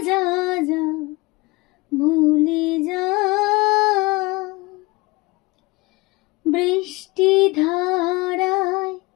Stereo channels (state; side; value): quieter; right; 24.0 dB